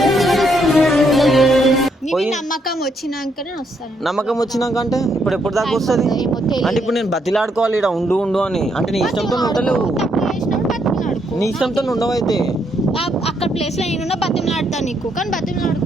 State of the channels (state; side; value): normal; both; correlation 0.74